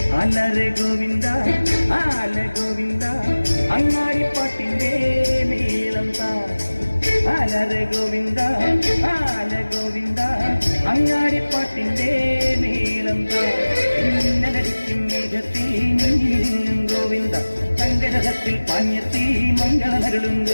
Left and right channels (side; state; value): both; inverted; correlation -1.00